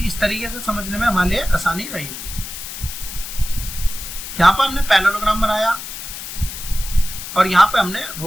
इस तरीके से समझने में हमारे लिए आसानी रहेगी। यहां पर हमने पैरेललोग्राम बनाया और यहां पे हमने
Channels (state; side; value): noise; left; hiss, 9 dB below the sound